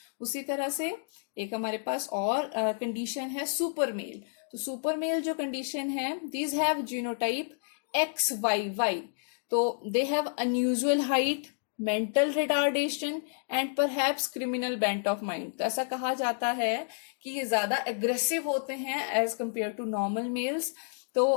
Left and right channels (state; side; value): silent; right; digital silence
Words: उसी तरह से एक हमारे पास और condition है super male। तो super male जो condition है these have genotype XYY। तो they have unusual height, mental retardation and perhaps criminal bent of mind। तो ऐसा कहा जाता है कि ये ज्यादा aggressive होते हैं as compared to normal males।